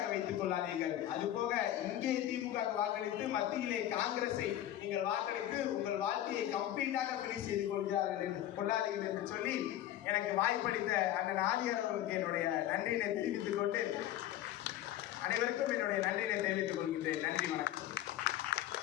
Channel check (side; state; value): right; quieter; 12.8 dB